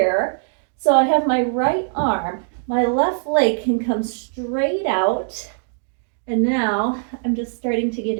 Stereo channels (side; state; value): left; silent; digital silence